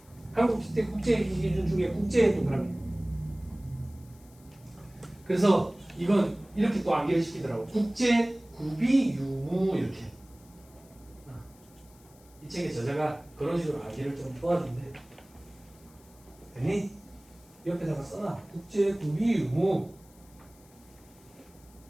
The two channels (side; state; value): left; noise; hiss, 27 dB below the sound